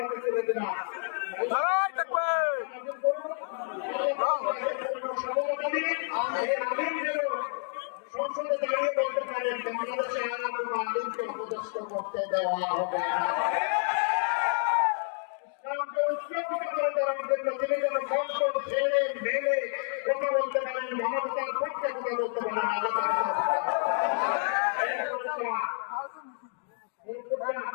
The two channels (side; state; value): right; silent; 58 dB below the other